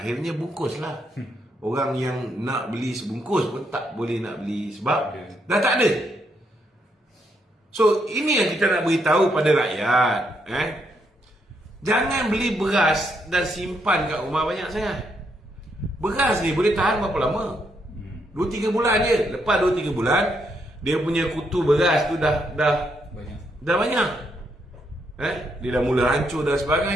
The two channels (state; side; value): normal; both; correlation 0.77